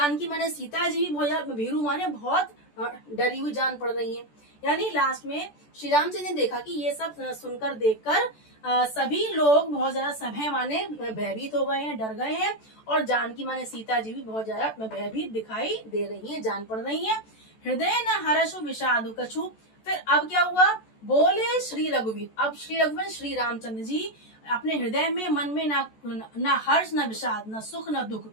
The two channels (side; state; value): right; late; 14 ms